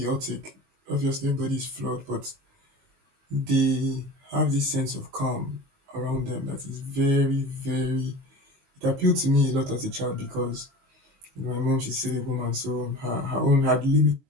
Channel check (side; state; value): left; late; 22 ms